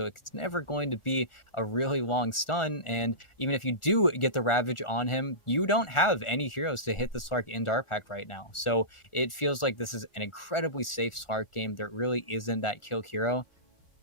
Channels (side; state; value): right; late; 1.4 ms